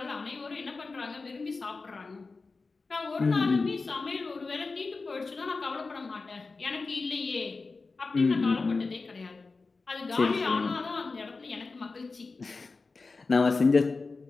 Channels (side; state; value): right; quieter; 4.0 dB